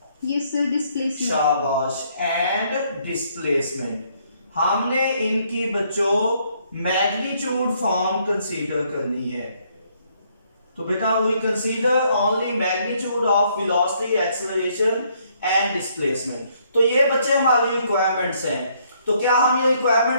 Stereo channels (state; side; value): inverted; both; correlation -0.69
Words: yes sir, displacement। शाबाश, एंड डिस्प्लेसमेंट। हमने इनकी बच्चों मैग्नीट्यूड फॉर्म कंसीडर करनी है। तो बेटा we consider only magnitude of velocity, acceleration and displacement. तो ये बच्चे हमारी रिक्वायरमेंट्स हैं। तो क्या हम ये